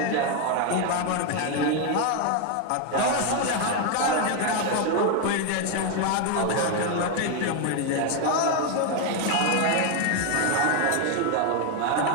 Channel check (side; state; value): both; different; correlation 0.01